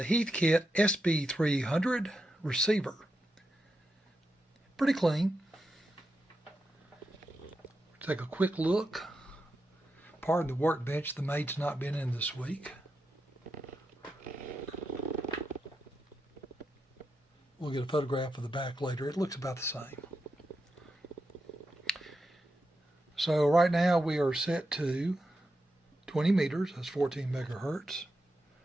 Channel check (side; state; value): both; normal; correlation 0.87